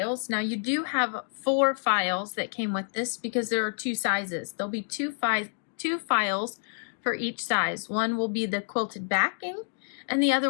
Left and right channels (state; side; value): silent; right; digital silence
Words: Now you do have 4 files that came with this because there are 2 sizes. There'll be two files for each size. One will be the quilted backing and the other